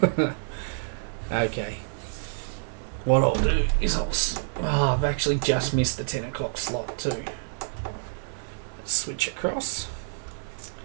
Okay. What I'll do is I've actually just missed the 10 o'clock slot too. Let's switch across.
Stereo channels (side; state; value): left; silent; digital silence